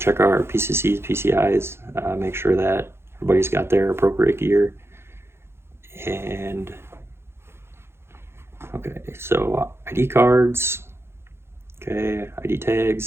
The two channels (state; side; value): late; left; 0.12 ms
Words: our PCCs, PCIs, make sure that everybody's got their appropriate gear. And, okay, so ID cards, okay, ID